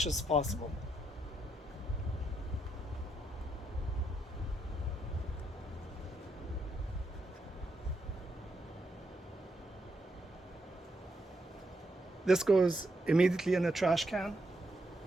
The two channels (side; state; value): both; normal; correlation 0.80